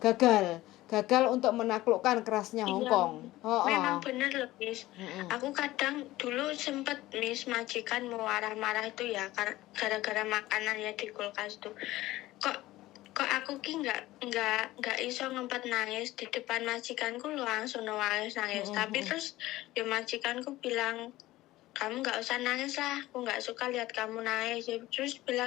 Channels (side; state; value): right; quieter; 17.0 dB